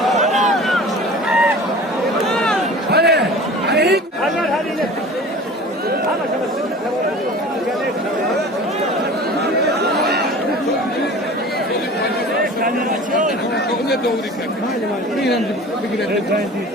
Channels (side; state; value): both; normal; correlation 0.40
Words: Ne doğru ki?